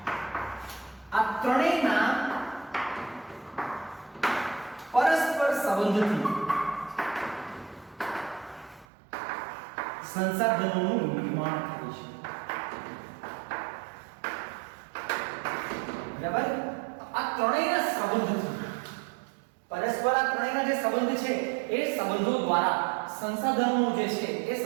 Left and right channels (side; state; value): left; drops out; at 8.8 s